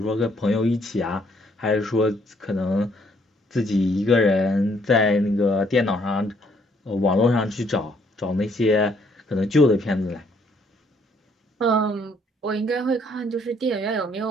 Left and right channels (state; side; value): normal; both; correlation 0.67